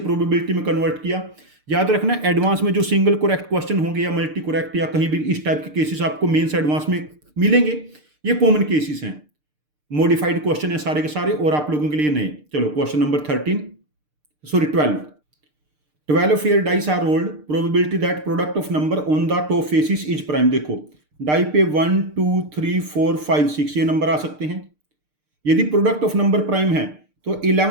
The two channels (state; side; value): late; left; 6.7 ms